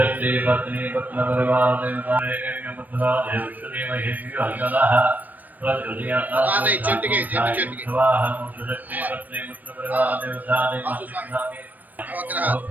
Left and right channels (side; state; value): left; late; 0.084 ms